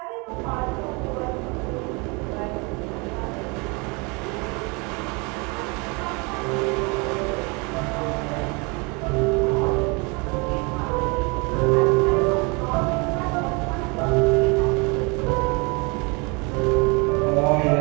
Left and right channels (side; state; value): left; quieter; 29.8 dB